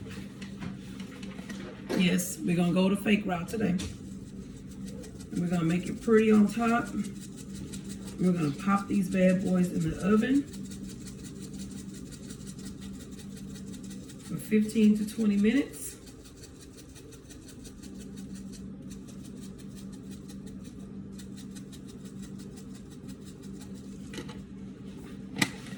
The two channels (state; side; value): identical; both; correlation 1.00